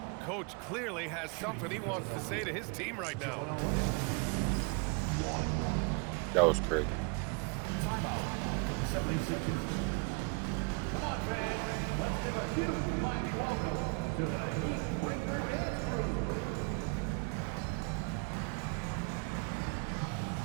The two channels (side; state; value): left; quieter; 31.9 dB